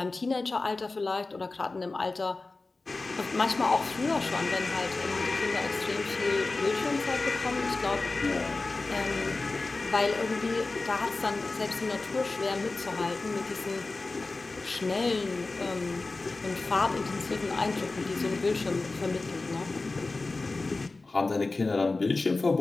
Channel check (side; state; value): right; quieter; 3.5 dB